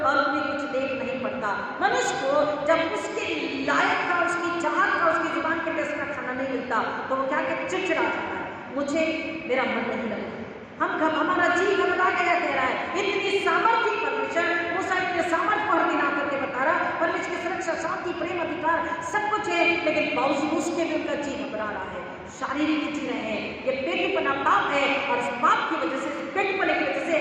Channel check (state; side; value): identical; both; correlation 1.00